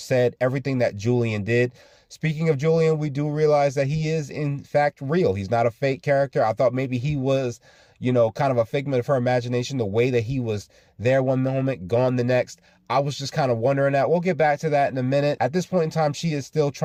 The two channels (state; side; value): identical; both; correlation 1.00